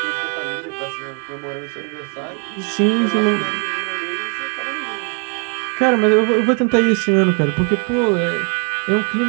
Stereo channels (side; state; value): left; quieter; 36.5 dB